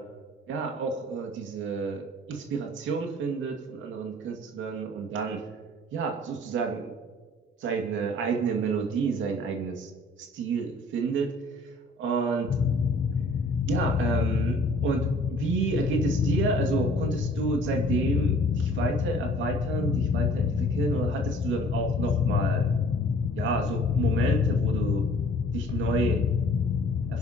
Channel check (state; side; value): normal; both; correlation 0.53